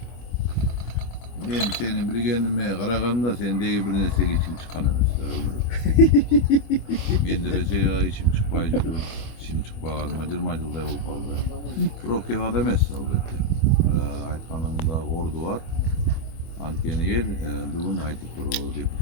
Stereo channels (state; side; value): late; right; 25 ms